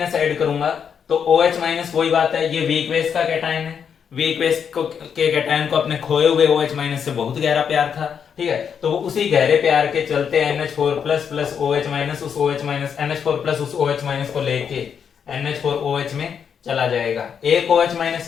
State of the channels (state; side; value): quieter; right; 7.4 dB